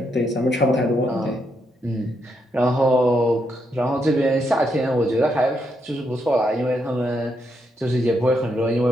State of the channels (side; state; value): both; normal; correlation 0.79